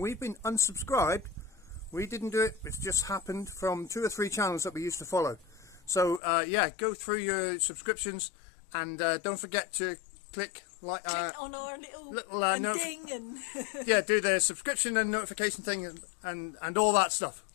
been unsubscribed. We didn't do it, it's just happened from 2 or 3 channels that we used to follow. So yeah, go through your subscriptions and don't forget to click like on our little ding and yeah, do the subscription and notification thing and all that stuff.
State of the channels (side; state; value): right; drops out; at 6.2 s